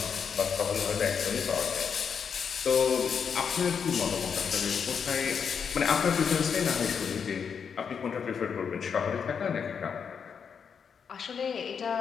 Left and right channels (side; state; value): right; quieter; 6.7 dB